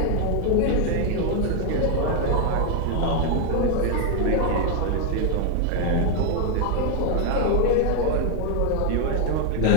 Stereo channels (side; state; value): both; different; correlation 0.01